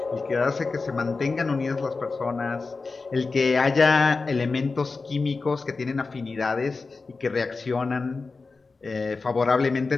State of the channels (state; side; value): quieter; right; 4.1 dB